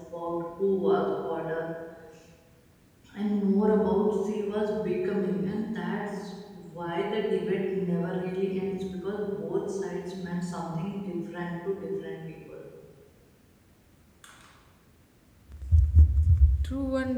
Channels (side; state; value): both; identical; correlation 1.00